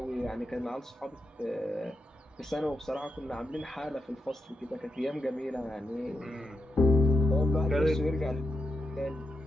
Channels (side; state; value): both; normal; correlation 0.87